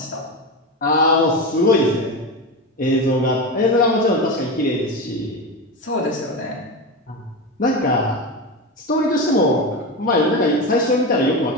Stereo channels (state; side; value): normal; both; correlation 0.19